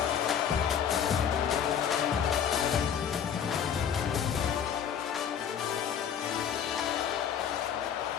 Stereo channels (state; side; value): quieter; right; 8.3 dB